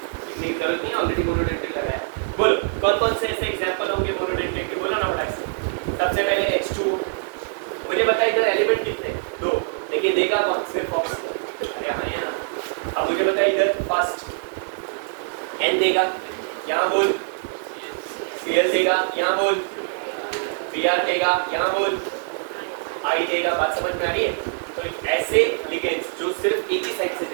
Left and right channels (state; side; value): silent; left; 55 dB below the other